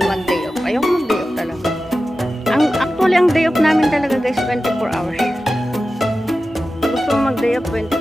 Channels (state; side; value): normal; both; correlation 0.94